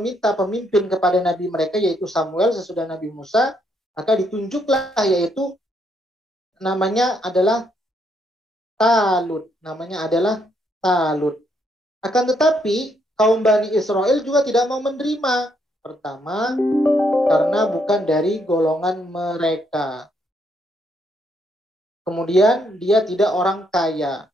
pemimpin kepada nabi mereka, yaitu Samuel sesudah Nabi Musa. Maka ditunjuklah, yaitu namanya adalah Talut. Akan tetapi kaum Bani Israel juga tidak mau menerima. Pertama, karena bukan dari golongan mereka. Kemudian dia tidak orang kaya.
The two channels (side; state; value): both; normal; correlation 0.74